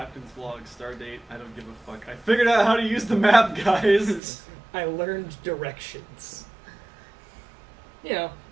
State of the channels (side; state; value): left; drops out; at 4.2 s